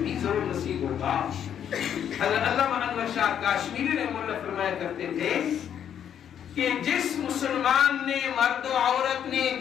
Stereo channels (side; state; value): right; quieter; 9.1 dB